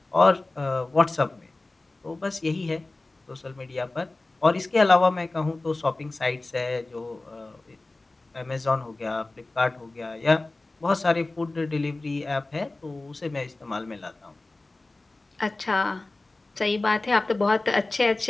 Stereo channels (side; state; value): right; quieter; 3.1 dB